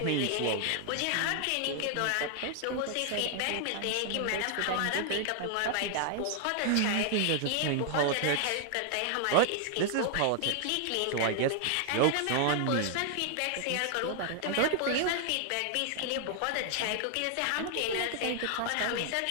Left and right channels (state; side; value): different; both; correlation 0.00